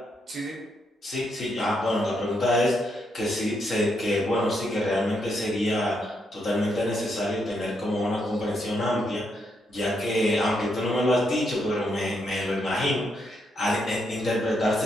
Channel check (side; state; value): both; normal; correlation 0.78